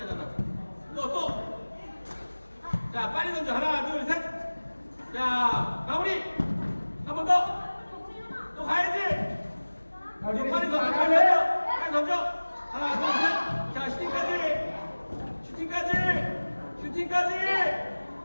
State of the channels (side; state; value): both; inverted; correlation -1.00